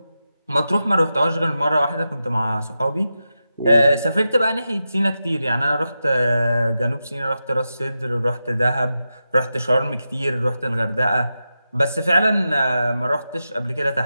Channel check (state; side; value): inverted; both; correlation -0.90